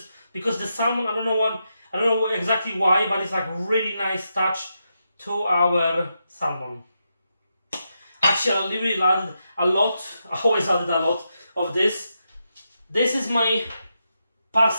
because the salmon, I don't know exactly why, but it's like really nice touch to our salmon. Actually, I really added a lot. I always added a lot of this. This is my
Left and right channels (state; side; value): inverted; both; correlation -0.85